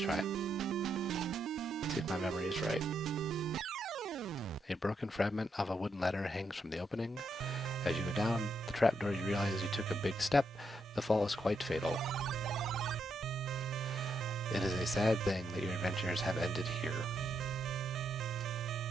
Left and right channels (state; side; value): normal; both; correlation 0.79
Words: it. See if my memory is right. A broken fragment of a wooden ladder hangs from the opening. As you go down the trapdoor, you realize you took a big step. The fall is quite fatal. It is a sad thing that your adventures have ended here.